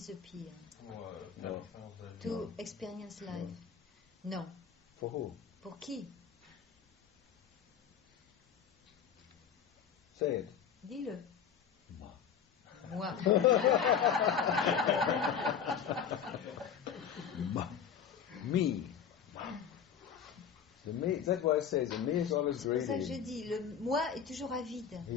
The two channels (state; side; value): quieter; right; 7.8 dB